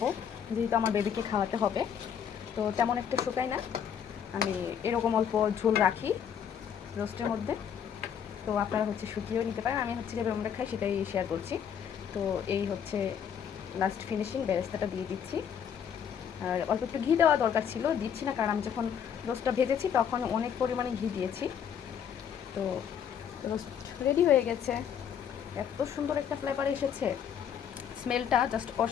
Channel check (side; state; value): right; quieter; 8.3 dB